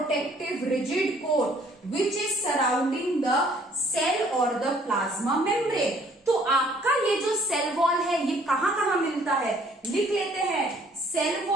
rigid coat which is surrounding the cell और द प्लाज्मा मेम्ब्रेन। तो आपका ये जो सेल वॉल है ये कहां कहां मिलता है? लिख लेते हैं। Cell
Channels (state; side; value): normal; both; correlation 0.60